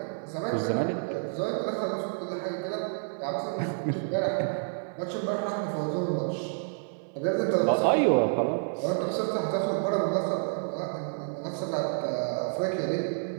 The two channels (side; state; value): left; silent; digital silence